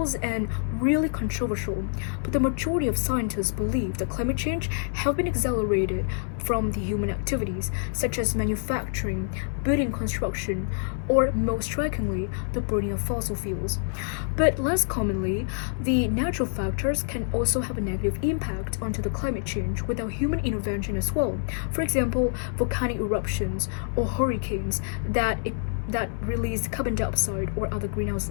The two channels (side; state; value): right; silent; 60 dB below the other